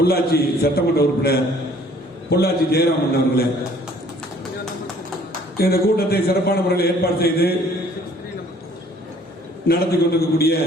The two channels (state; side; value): normal; both; correlation 0.57